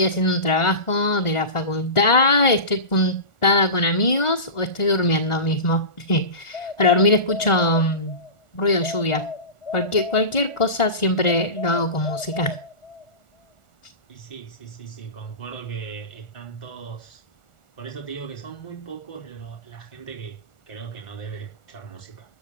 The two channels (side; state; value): right; late; 1.4 ms